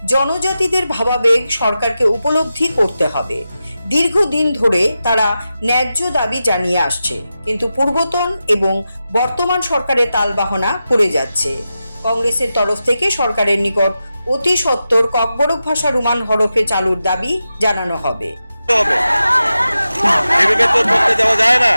জনজাতিদের ভাবাবেগ সরকারকে উপলব্ধি করতে হবে। দীর্ঘদিন ধরে তারা ন্যায্য দাবি জানিয়ে আসছে, কিন্তু পূর্বতন এবং বর্তমান সরকারের তালবাহনা পড়ে যাচ্ছে। কংগ্রেসের তরফ থেকে সরকারের নিকট অতি সত্বর ককবরক ভাষা রোমান হরফে চালুর দাবি জানানো হবে। এভাবে তো করতে যাওয়া যায় না,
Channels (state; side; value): inverted; both; correlation -0.91